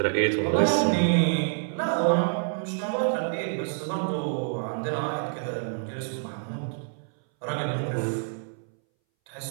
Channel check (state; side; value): silent; left; 60 dB below the other